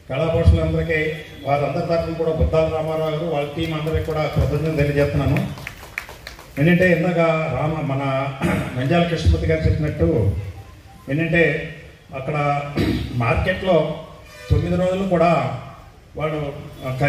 కళాపోషకులందరికీ వారందరి తరఫున కూడా బుద్ధాల రామారావు గారు వాళ్ళ టీం అందరికీ కూడా కృతజ్ఞతలు తెలియజేస్తున్నాను. ఏంటంటే ఇందాక మన నంద్యాల కృష్ణమూర్తి గారు చెప్పినట్టు ఏంటంటే అక్కడ మార్కెట్లో 9 రోజులు కూడా వాడు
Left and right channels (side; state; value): both; identical; correlation 1.00